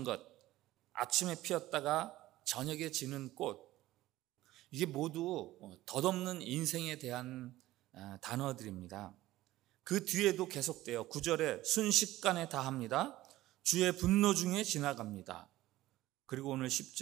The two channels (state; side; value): quieter; left; 16.2 dB